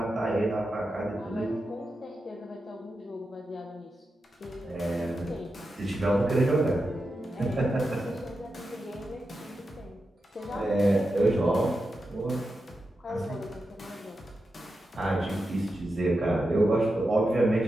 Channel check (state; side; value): normal; both; correlation 0.89